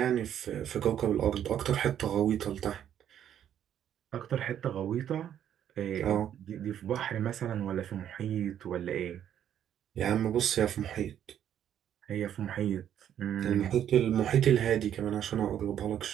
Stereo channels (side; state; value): left; quieter; 10.1 dB